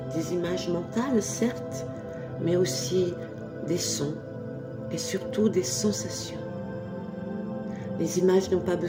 des images mentales, certes, mais aussi des sons et surtout des sensations. Les images n'ont pas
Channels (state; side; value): identical; both; correlation 1.00